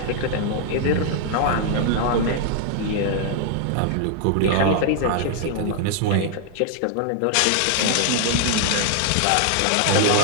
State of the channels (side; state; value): both; different; correlation 0.00